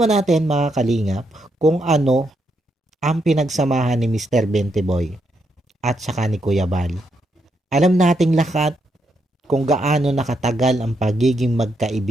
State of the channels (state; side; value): normal; both; correlation 0.80